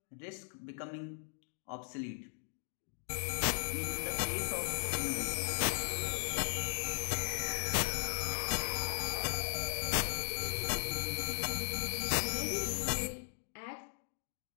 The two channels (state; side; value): silent; right; digital silence